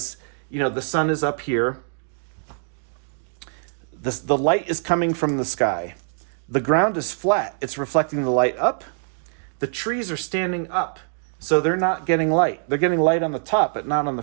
the sun is up here, the light is coming from the sky. The ground is flat. It's reflecting the light up. The trees are standing up, so they're not getting light. They're getting light on the top, but not on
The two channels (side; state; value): left; silent; digital silence